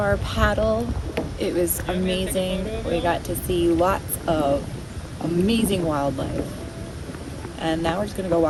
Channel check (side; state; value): both; identical; correlation 1.00